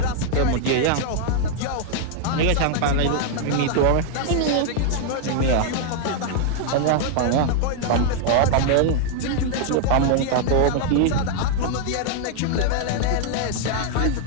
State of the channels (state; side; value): different; both; correlation 0.00